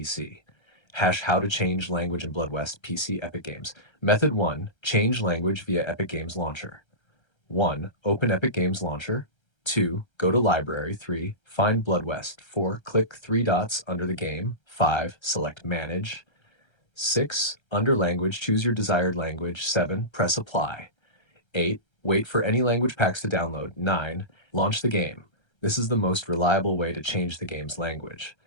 Hash how to change language in Blood West PC Epic Games. Method 1, change language via Epic Games Launcher. 1. Open Epic Games Launcher. 2. Go to Library. 3. Find Blood West. 4. Click three dots under the game. 5. Select Manage. 6. Under Language, choose your desired language. 7. Press Apply. 8. Wait for any language packs to download. 9. Launch the game. This is the most reliable way to change the game's language.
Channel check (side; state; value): right; late; 1.3 ms